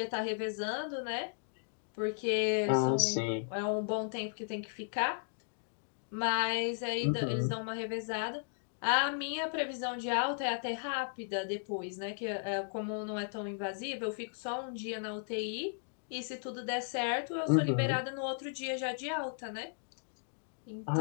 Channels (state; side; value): silent; right; digital silence